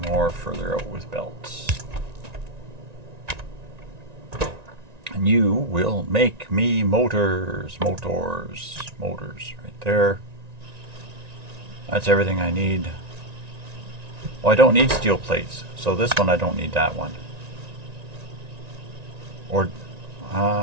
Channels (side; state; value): left; late; 1.9 ms